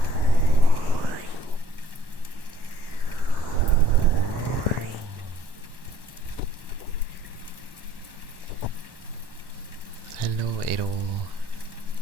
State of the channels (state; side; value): late; left; 1.1 ms